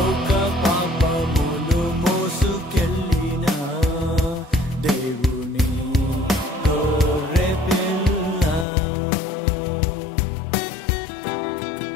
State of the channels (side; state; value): right; drops out; at 8.7 s